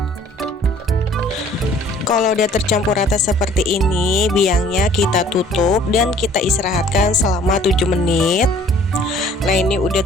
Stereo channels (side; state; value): both; normal; correlation 0.55